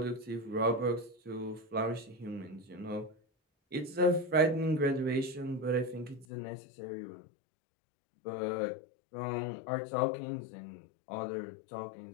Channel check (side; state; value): right; drops out; at 6.2 s